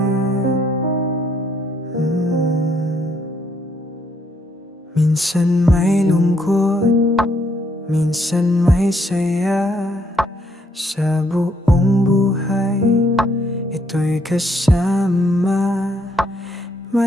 may lungkot, minsan may saya. Sa buong buhay, ito'y kasama.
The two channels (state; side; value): normal; both; correlation 0.71